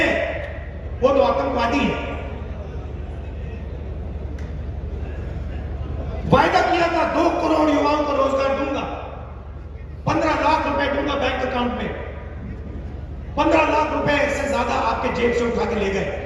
वो तो आतंकवादी है। वायदा किया था 2 करोड़ युवाओं को रोजगार दूंगा, 15 लाख रुपए दूंगा बैंक अकाउंट में। 15 लाख रुपए से ज्यादा आपके जेब से उठा के ले गए।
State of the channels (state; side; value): identical; both; correlation 1.00